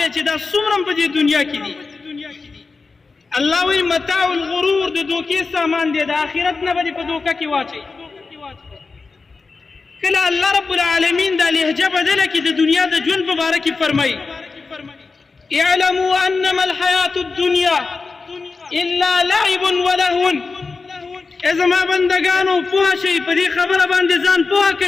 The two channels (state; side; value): quieter; right; 4.2 dB